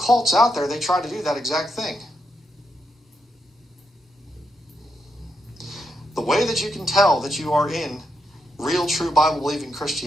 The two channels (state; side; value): normal; both; correlation 0.82